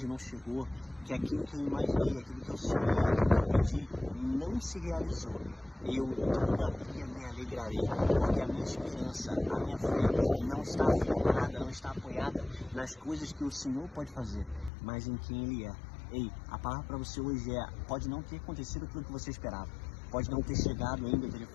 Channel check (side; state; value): right; drops out; at 14.7 s